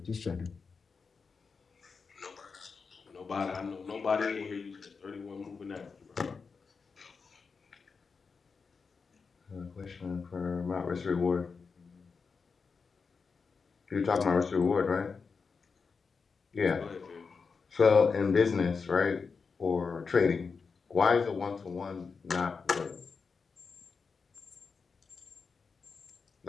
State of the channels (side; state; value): right; quieter; 5.1 dB